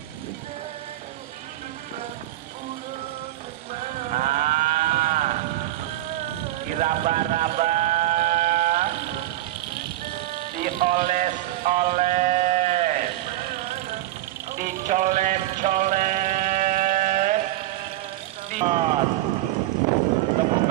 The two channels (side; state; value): left; quieter; 15.2 dB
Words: raba-raba, dioles-oles, dicolet-colet, tepuk